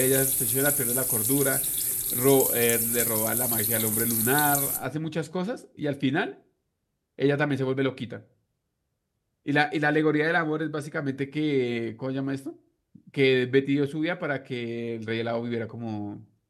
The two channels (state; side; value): identical; both; correlation 1.00